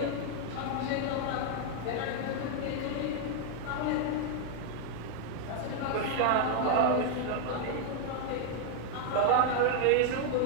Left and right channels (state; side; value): different; both; correlation 0.00